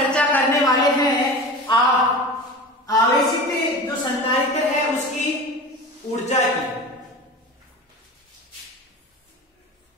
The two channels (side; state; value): both; normal; correlation 0.33